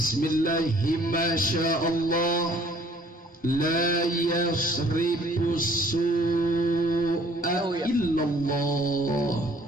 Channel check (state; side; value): normal; both; correlation 0.58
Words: masyaallah. La yasrifu su'a illallah.